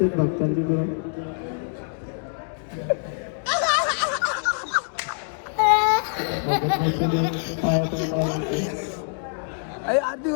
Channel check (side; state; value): right; silent; digital silence